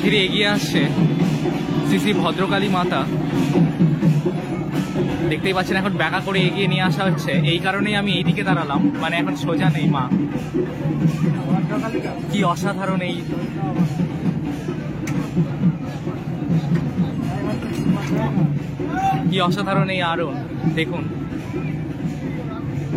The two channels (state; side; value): identical; both; correlation 1.00